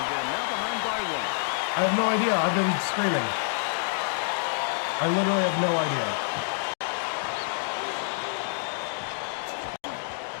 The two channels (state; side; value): silent; right; digital silence